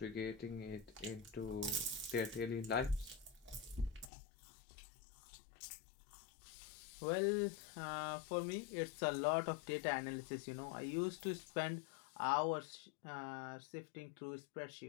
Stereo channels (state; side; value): drops out; right; at 4.1 s